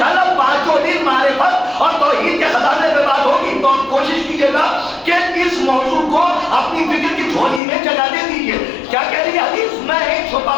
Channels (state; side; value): drops out; right; at 7.6 s